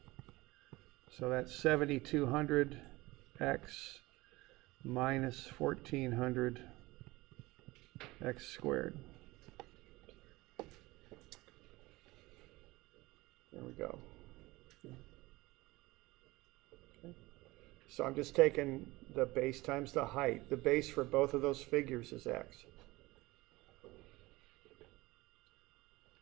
So that's 7,200x minus 1,400x squared. There we go. Okay. So I'm just taking the base times the height. The base for both of those figures is x.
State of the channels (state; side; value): quieter; left; 20.7 dB